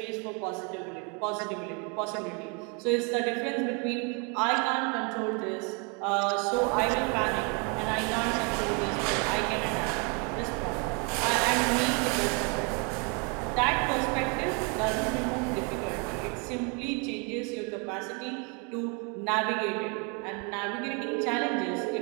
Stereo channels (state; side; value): quieter; left; 34.3 dB